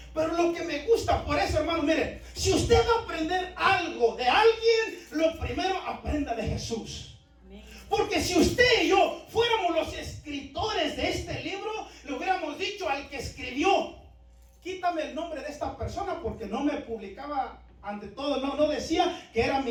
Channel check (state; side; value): identical; both; correlation 1.00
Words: Pero lo que me gusta, por eso, hermano, mire, si usted va a aprender algo de alguien, lo primero aprenda de Jesús. Amén. Porque si usted y yo fuéramos los escritores de este libro, le hubiéramos dicho al que escribió: quítame el nombre de esta persona, porque no me publicaba ante todo, no decía que era